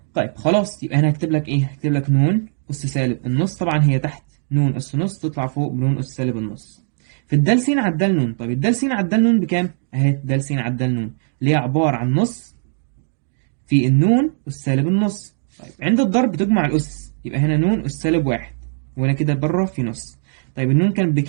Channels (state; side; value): silent; left; digital silence